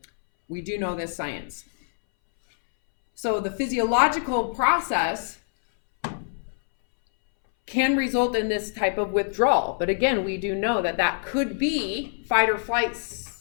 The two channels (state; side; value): silent; right; 62 dB below the other